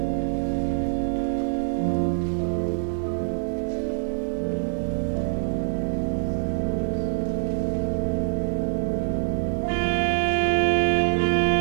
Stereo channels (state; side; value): silent; left; digital silence